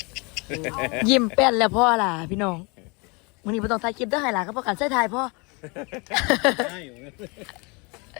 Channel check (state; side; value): quieter; right; 29.8 dB